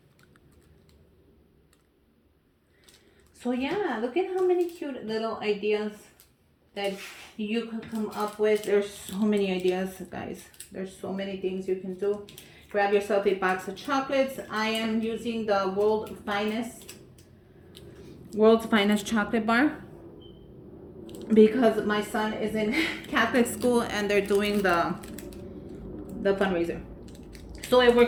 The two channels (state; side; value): identical; both; correlation 1.00